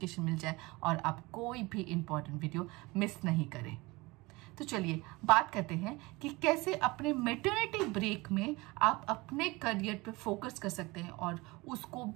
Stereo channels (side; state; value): left; quieter; 23.1 dB